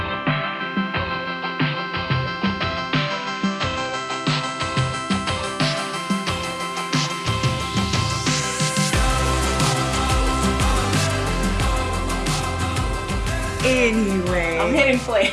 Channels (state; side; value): identical; both; correlation 1.00